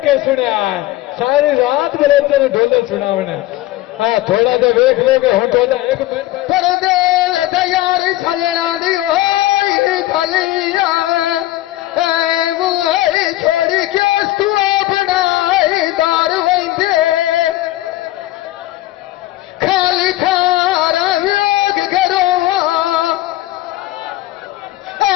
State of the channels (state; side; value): quieter; right; 16.1 dB